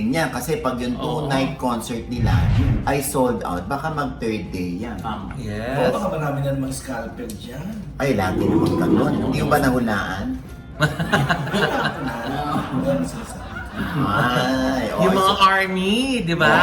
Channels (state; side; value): identical; both; correlation 1.00